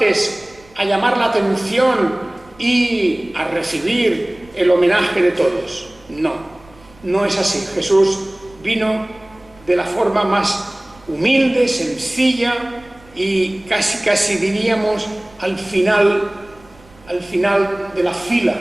a llamar la atención y a recibir el homenaje de todos. No es así. Jesús vino de la forma más humilde, sencilla y casi diríamos al final de la fila,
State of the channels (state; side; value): noise; right; rumble, 27 dB below the sound